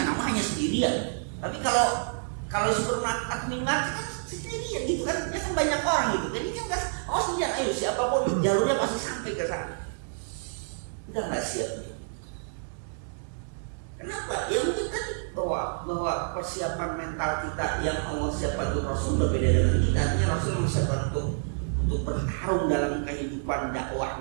namanya sendirian. Tapi kalau supermarket atau minimarket kan sendirian gitu kan, ya kan banyak orang gitu. Jadi kan nggak, sendirian, ayo siapapun jalurnya pasti sampai ke sana. Kita nggak siap. Kenapa? Ya mungkin kan bahwa persiapan mental kita yang Allah siapkan untuk Rasul berbeda dengan kita. Artinya Rasul mempersiapkan untuk bertarung dalam kehidupan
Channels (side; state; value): left; silent; digital silence